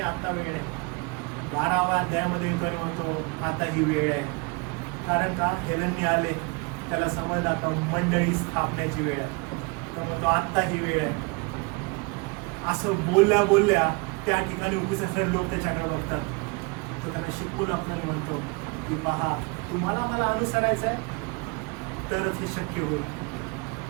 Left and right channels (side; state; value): left; quieter; 29.3 dB